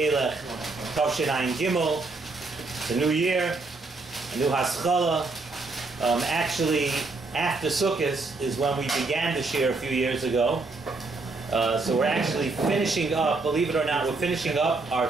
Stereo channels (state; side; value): quieter; left; 3.6 dB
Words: Tavshin Ayin Gimel. It's a new year, a new Haskalah. Actually, after Sukkot is when we began the Shiur a few years ago. So we're actually finishing up, believe it or not, we're finishing up our